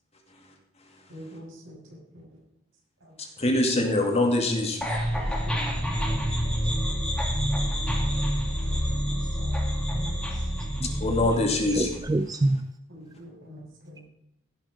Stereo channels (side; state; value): both; normal; correlation 0.72